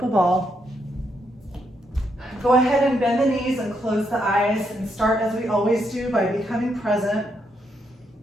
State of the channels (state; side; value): normal; both; correlation 0.78